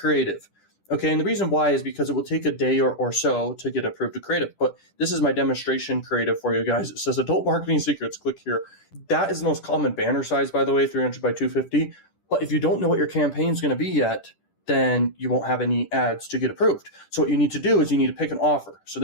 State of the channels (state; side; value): late; right; 10 ms